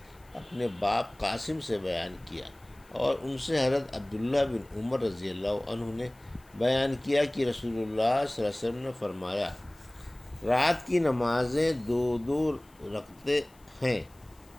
اپنے باپ قاسم سے بیان کیا، اور ان سے حضرت عبداللہ بن عمر رضی اللہ عنہ نے بیان کیا کہ رسول اللہ صلی اللہ علیہ وسلم نے فرمایا رات کی نمازیں 2 رکعتیں ہیں،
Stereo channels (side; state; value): left; noise; hiss, 30 dB below the sound